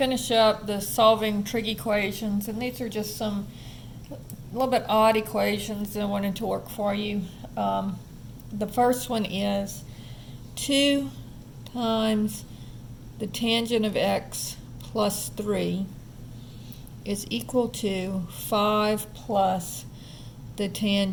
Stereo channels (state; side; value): identical; both; correlation 1.00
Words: up the solving trig equations, and these are just some a little bit odd equations that I wanted to work for you. The first one is 2 times the tangent of x plus 3 is equal to 5 plus the